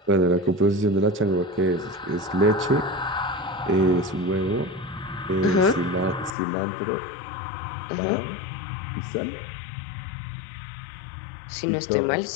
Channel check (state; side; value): drops out; right; at 6.4 s